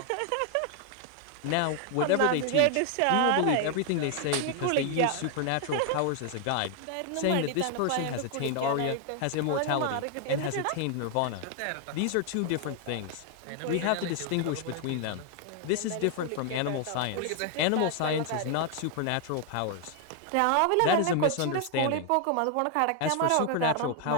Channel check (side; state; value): both; different; correlation 0.00